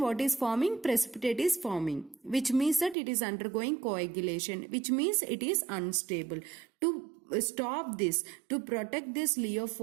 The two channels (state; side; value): drops out; left; at 3.0 s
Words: is forming? Precipitate is forming, which means that it is undergoing coagulation, which means it is unstable. To stop this, to protect this